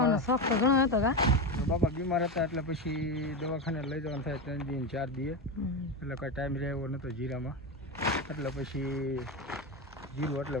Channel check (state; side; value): normal; both; correlation 0.16